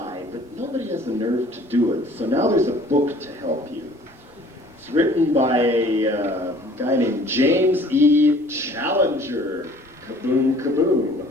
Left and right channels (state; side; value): normal; both; correlation 0.53